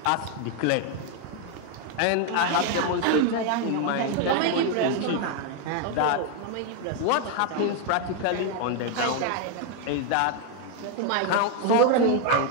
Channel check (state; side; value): different; both; correlation 0.01